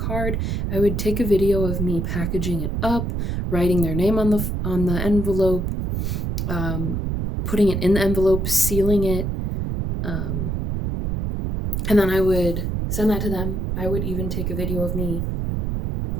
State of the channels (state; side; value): noise; right; rumble, 1 dB below the sound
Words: I would take a video of me packaging it up, writing their name on the envelope, putting it in the envelope, sealing it, and then I would send that to them. I would even take a video of me